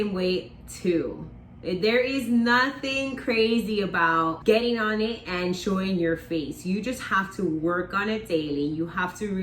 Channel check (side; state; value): both; identical; correlation 1.00